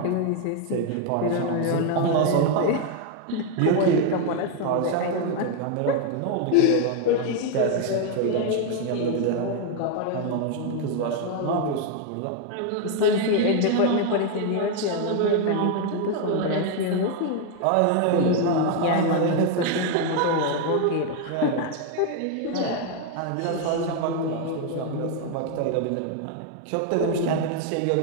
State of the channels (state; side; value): different; both; correlation 0.01